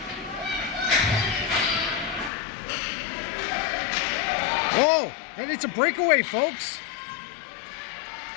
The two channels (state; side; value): drops out; right; at 2.3 s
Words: Oh, and it's a breakaway, folks.